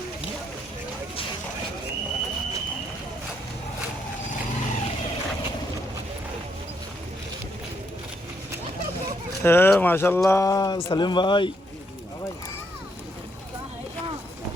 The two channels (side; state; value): both; normal; correlation 0.75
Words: ماشاء اللہ سلیم بھائی